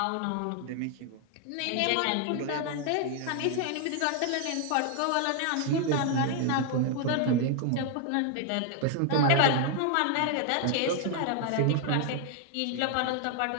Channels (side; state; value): both; different; correlation 0.00